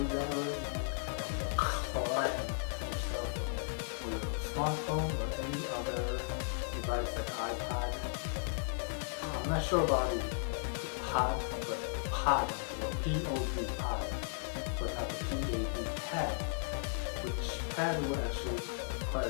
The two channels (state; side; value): silent; right; digital silence